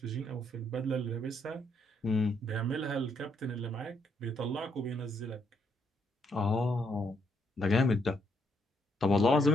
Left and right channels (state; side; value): normal; both; correlation 0.74